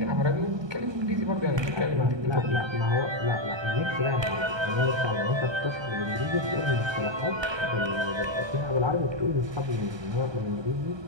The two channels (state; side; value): late; left; 1.2 ms